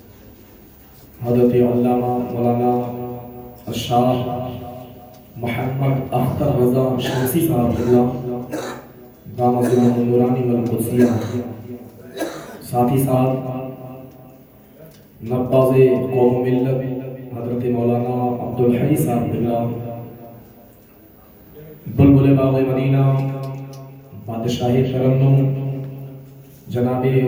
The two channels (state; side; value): identical; both; correlation 1.00